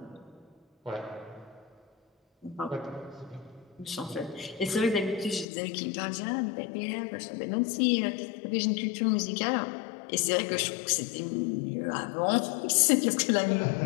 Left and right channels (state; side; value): drops out; right; at 5.5 s